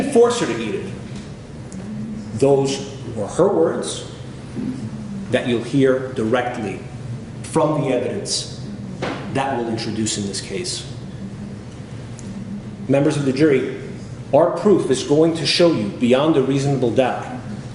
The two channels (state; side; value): identical; both; correlation 1.00